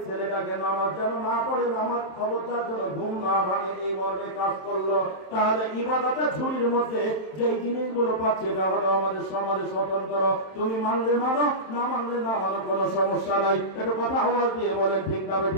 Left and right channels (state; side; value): late; right; 27 ms